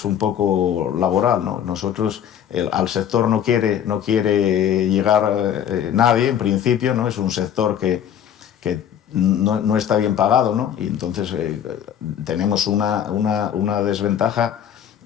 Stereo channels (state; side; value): quieter; right; 9.5 dB